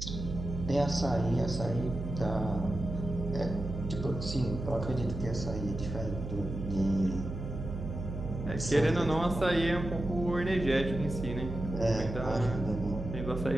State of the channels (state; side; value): noise; right; hum, 6 dB below the sound